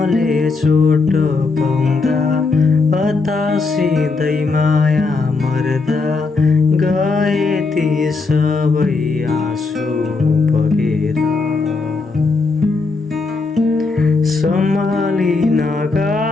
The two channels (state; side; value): quieter; right; 4.0 dB